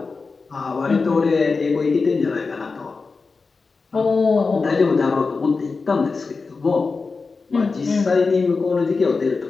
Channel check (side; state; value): right; quieter; 4.3 dB